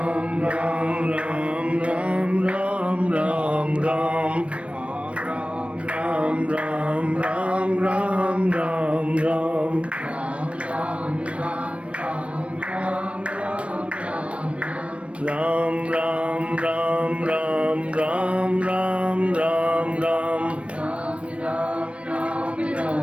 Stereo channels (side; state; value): left; late; 0.061 ms